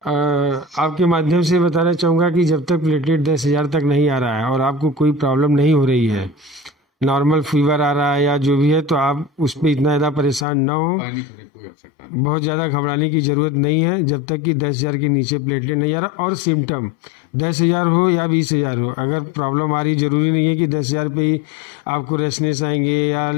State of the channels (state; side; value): drops out; right; at 10.5 s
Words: आपके माध्यम से बताना चाहूँगा कि जब तक प्लेटलेट 10,000 तक नहीं आ रहा है और आपको कोई प्रॉब्लम नहीं हो रही है, नॉर्मल फीवर आ रहा है या जो भी है, तो आप उस पर इतना ज़्यादा परेशान ना हो, बहुत ज़्यादा घबराने की ज़रूरत नहीं है जब तक कि 10,000 के नीचे प्लेटलेट नहीं आ रहा। और सिम्टम 10,000 हो या 20,000 हो, अगर प्रॉब्लम आ रही, जरूरी नहीं है कि 10,000 पे ही आपको रेसनेस आएंगे या